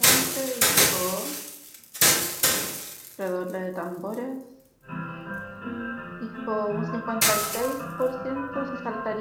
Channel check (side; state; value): both; identical; correlation 1.00